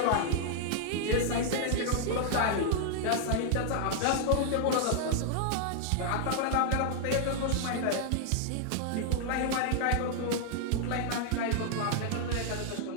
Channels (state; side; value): different; both; correlation 0.00